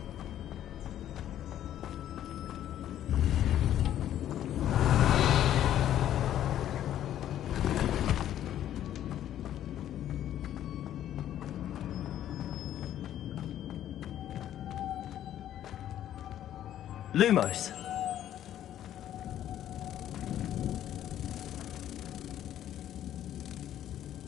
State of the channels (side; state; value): right; quieter; 11.5 dB